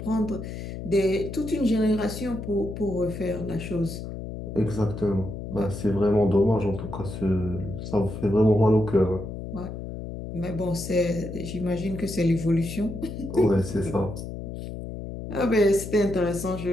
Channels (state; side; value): noise; left; hum, 8 dB below the sound